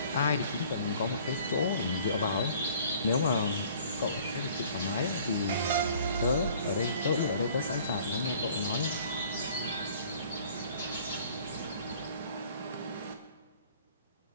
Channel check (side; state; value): both; inverted; correlation -0.53